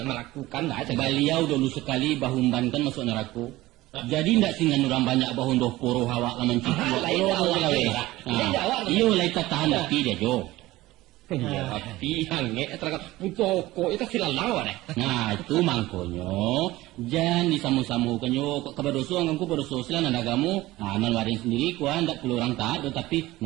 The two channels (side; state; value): left; quieter; 17.9 dB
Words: lah. Beliau dulu sekali bahumbankan masuk neraka. Jadi ndak singan orang banyak bahun doh poro hawa laman cipu. Iyo lai tahan tapi dia jo. Tapi hange terangkat putoko itu silalawa deh. Nah itu mangkonyo jangan disamu-samu kanyo kebadoso angku badoso silan nagamu nan warin sendiri kuan ndak perlu orang taat tapi